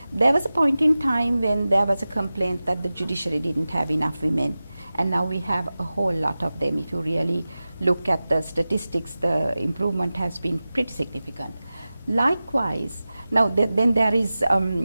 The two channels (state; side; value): inverted; both; correlation -0.95